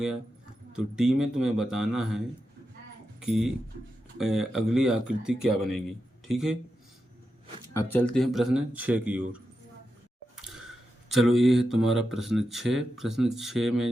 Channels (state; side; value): normal; both; correlation 0.88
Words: तो डी में तुम्हें बताना है कि अगली आकृति क्या बनेगी, ठीक है। अब चलते हैं प्रश्न 6 की ओर। चलो ये है तुम्हारा प्रश्न 6। प्रश्न 6 में